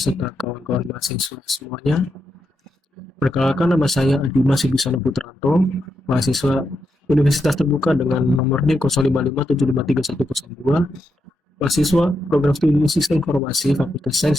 kawan-kawan mahasiswa semuanya. Perkenalkan, nama saya Adima Sibisana Putranto, mahasiswa Universitas Terbuka dengan nomor NIM 0557531102, mahasiswa Program Studi Sistem Informasi Fakultas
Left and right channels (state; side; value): normal; both; correlation 0.84